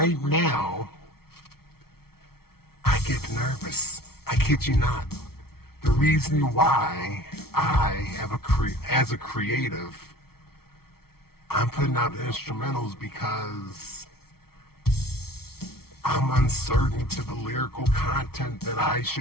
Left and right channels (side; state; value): right; late; 0.94 ms